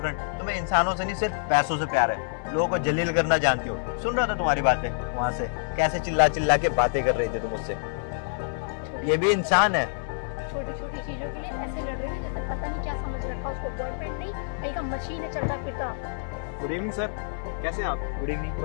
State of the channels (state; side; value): silent; right; 58 dB below the other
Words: तुम्हें इंसानों से नहीं सिर्फ पैसों से प्यार है। लोगों को जलील करना जानती हो। सुन रहा था तुम्हारी बातें वहां से, कैसे चिल्ला चिल्ला के बातें कर रही थी तुम मुझसे। ये भी इंसान है। छोटी छोटी चीजों के लिए ऐसे लड़ रहे थे जैसे पता नहीं क्या समझ रखा उसको। बॉयफ्रेंड नहीं, कहीं का मशीन है चलता फिरता। गुड इवनिंग सर, कैसे हैं आप? Good evening.